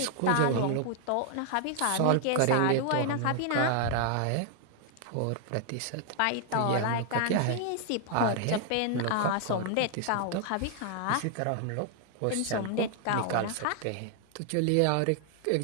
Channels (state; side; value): different; both; correlation 0.00